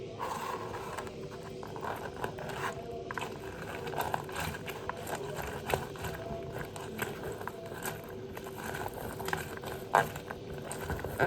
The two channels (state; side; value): identical; both; correlation 1.00